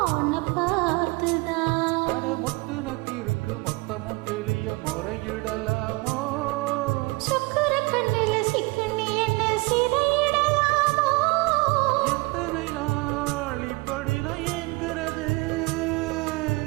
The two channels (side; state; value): left; quieter; 25.4 dB